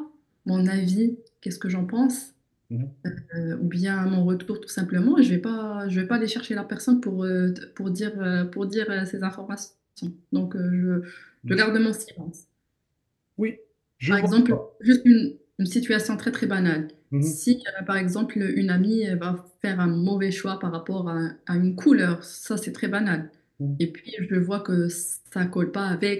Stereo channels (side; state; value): both; identical; correlation 1.00